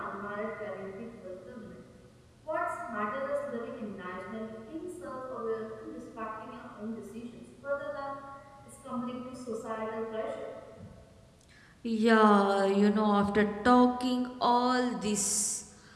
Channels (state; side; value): identical; both; correlation 1.00